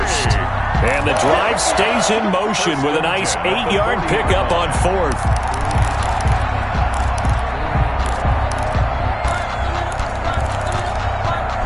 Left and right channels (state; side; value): identical; both; correlation 1.00